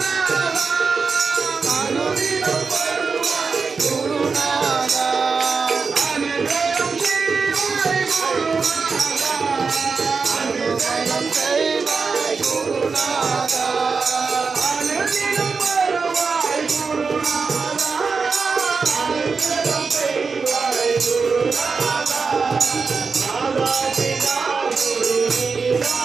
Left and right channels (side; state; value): left; quieter; 4.9 dB